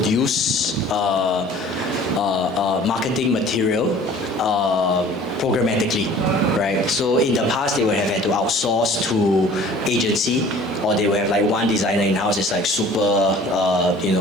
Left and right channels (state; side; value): normal; both; correlation 0.48